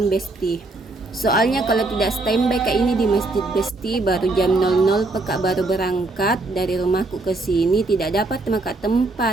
Besti. Soalnya kalau tidak standby kayak ini di masjid Besti baru jam 00 pekak baru berangkat dari rumahku ke sini, tidak dapat maka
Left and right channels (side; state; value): left; quieter; 3.1 dB